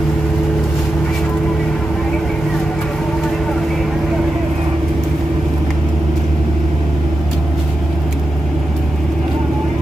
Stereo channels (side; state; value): both; normal; correlation 0.89